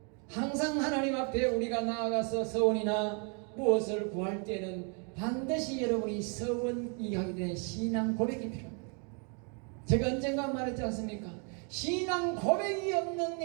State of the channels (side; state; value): left; quieter; 37.6 dB